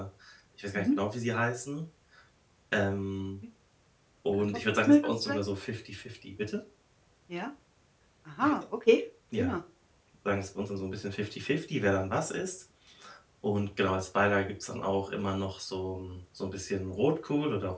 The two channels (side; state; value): both; identical; correlation 1.00